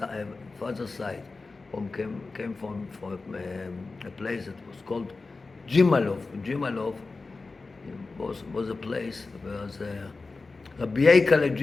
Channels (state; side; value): quieter; right; 3.8 dB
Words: father's side. Came from a place that was called Jimalov. Jimalov was a place where Rabbi Yeikale